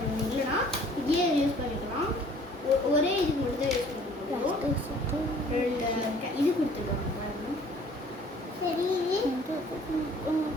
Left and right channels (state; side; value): normal; both; correlation 0.55